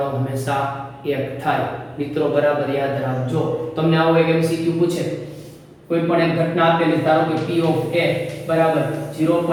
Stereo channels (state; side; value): identical; both; correlation 1.00